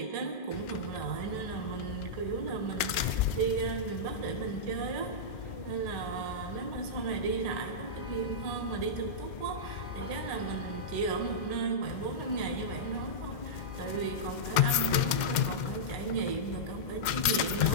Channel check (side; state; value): right; late; 2.1 ms